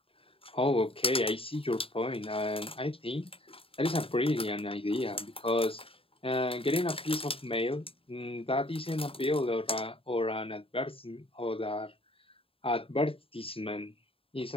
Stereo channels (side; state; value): right; late; 0.27 ms